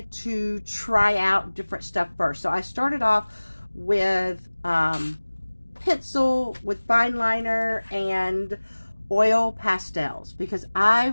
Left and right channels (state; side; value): inverted; both; correlation -1.00